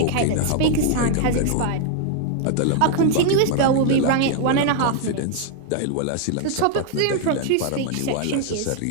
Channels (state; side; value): different; both; correlation 0.00